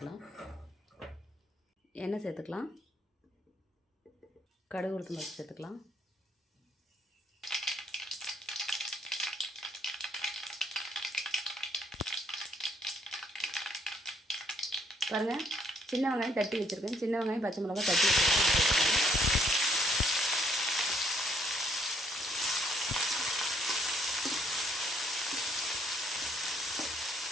எண்ணெய் சேர்த்துக்கலாம். கடுகு, உளுத்தம் பருப்பு சேர்த்துக்கலாம். பாருங்கள், சின்ன வெங்காயம் தட்டி வச்சுருக்கேன். சின்ன வெங்காயம், பச்சை மிளகா தட்டி வச்சுருக்கேன்.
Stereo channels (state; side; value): normal; both; correlation 0.68